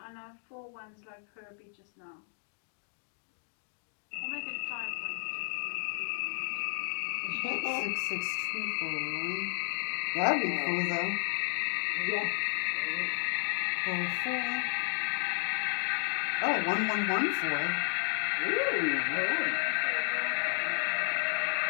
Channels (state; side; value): silent; right; digital silence